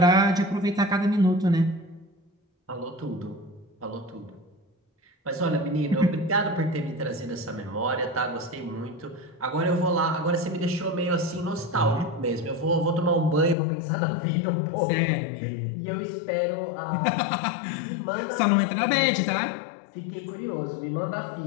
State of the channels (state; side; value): drops out; right; at 13.6 s